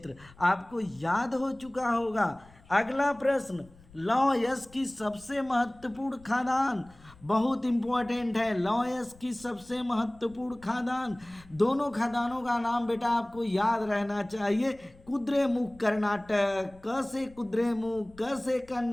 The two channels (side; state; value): left; noise; rumble, 25 dB below the sound